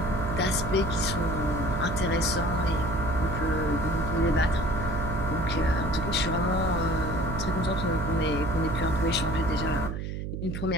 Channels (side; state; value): right; noise; hum, 5 dB below the sound